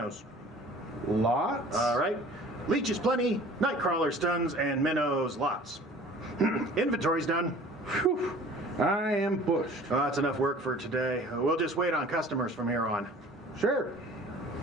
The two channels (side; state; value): both; normal; correlation 0.47